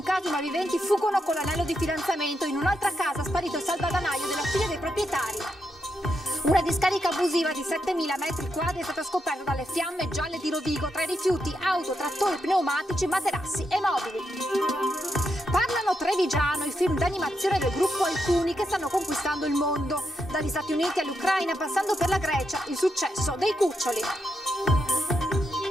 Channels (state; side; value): normal; both; correlation 0.83